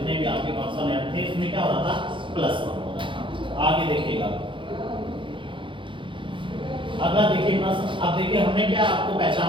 भी आपके कॉन्सोनेंट थे उसमें क्या हो रहा था +1 हो रहा था। आगे देखिएगा अगला देखिए प्रश्न। अब देखिए हमने क्या आपको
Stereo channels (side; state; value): left; late; 0.24 ms